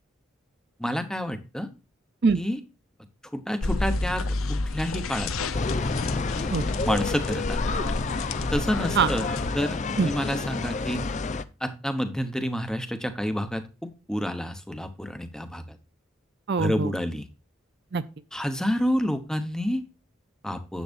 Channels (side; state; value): both; normal; correlation 0.74